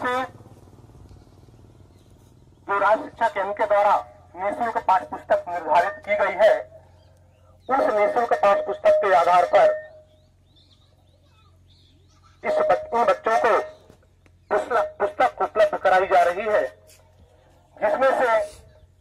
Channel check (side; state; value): both; identical; correlation 1.00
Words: जो राज्य शिक्षा केंद्र के द्वारा निःशुल्क पाठ्य पुस्तक निर्धारित की गई है, उस निःशुल्क पाठ्य पुस्तक के आधार पर इन बच्चों को पुस्तक उपलब्ध कराई जा रही है, जिसमें से